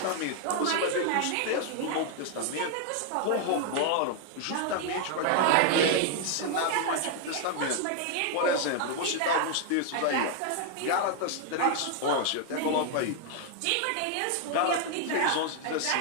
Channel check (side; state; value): both; different; correlation 0.00